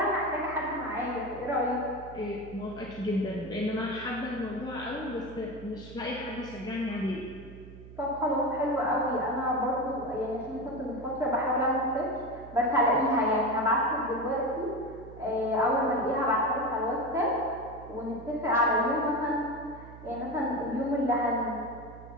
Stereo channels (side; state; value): right; noise; hum, 16 dB below the sound